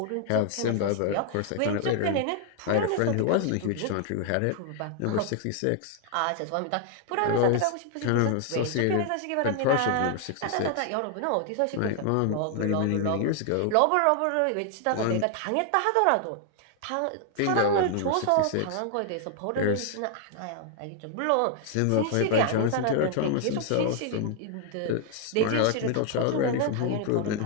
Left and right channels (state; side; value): different; both; correlation 0.00